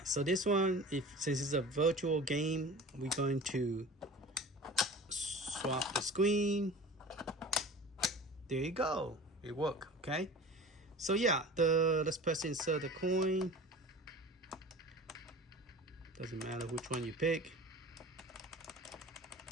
so this one, since it's a virtual game, we're going to swap the screen. There you go. It worked, okay? So yeah, let's press insert the coin. Doesn't matter which one you pick.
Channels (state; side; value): normal; both; correlation 0.38